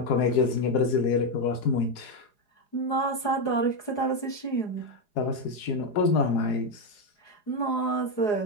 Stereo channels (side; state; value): right; late; 4.8 ms